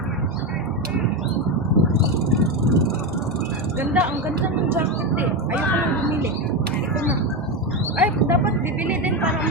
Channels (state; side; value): normal; both; correlation 0.13